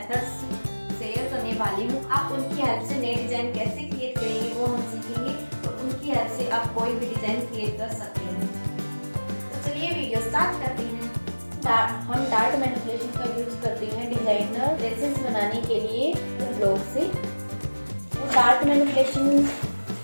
शेयर करने वाली हूँ। आप उनकी हेल्प से नए डिजाइन कैसे क्रिएट करेंगे वो हम सीखेंगे और उनकी हेल्प से आप कोई भी डिजाइन क्रिएट कर सकते हैं। तो चलिए वीडियो स्टार्ट करते हैं। हम डार्ट मैनिपुलेशन का यूज करते हैं डिजाइनर ड्रेसेस बनाने के लिए ब्लॉक से। डार्ट मैनिपुलेशन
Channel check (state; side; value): inverted; both; correlation -1.00